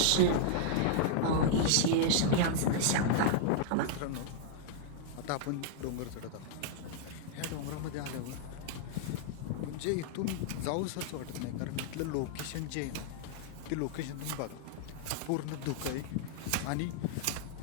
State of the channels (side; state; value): both; different; correlation -0.01